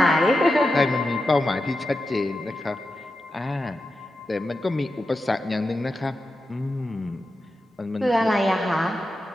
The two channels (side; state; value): both; normal; correlation 0.90